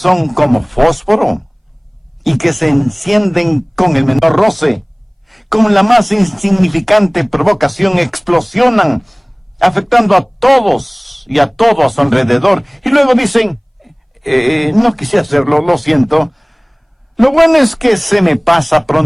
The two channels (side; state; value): both; identical; correlation 1.00